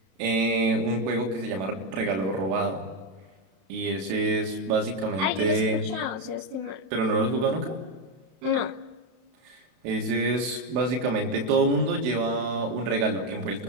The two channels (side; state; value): left; late; 31 ms